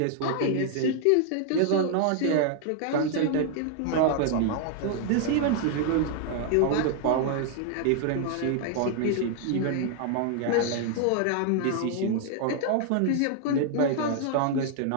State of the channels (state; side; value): different; both; correlation 0.00